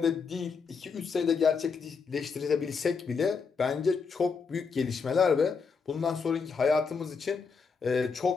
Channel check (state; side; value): quieter; right; 5.3 dB